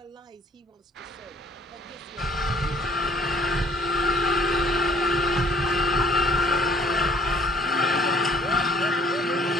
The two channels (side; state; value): both; normal; correlation 0.57